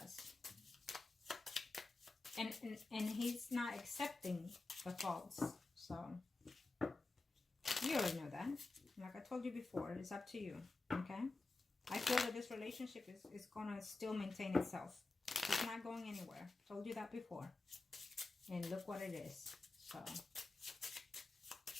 and he's not accepting the faults. So you already know that. Like I told you before, it's up to you. Okay? I feel that this relationship is going to still maintain itself. It's not going anywhere. Told you that before. And look what it is. So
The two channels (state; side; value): quieter; right; 3.4 dB